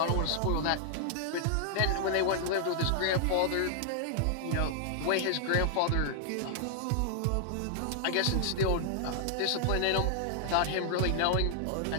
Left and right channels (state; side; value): different; both; correlation -0.01